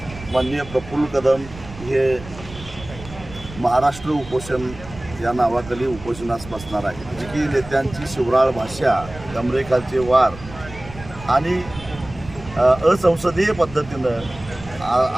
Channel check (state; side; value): noise; right; rumble, 15 dB below the sound